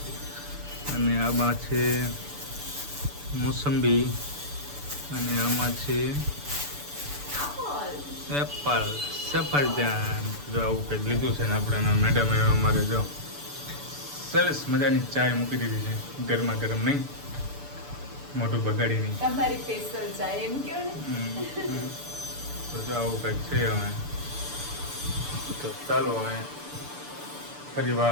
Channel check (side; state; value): left; late; 6.9 ms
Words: અને આમાં છે મોસંબી અને આમાં છે એપલ, સફરજન. જો આવું કંઈક લીધું છે ને આપણે. મેડમે અમારે જો સરસ મજાની ચાય મૂકી દીધી છે, ગરમા ગરમ નહીં, મોઢું બગાડી નહીં. તમારી સ્પેશિયલ ચાય એમ કહો ને. તો જો આવું કંઈક છે. હવે તો ચાલો હવે ફરી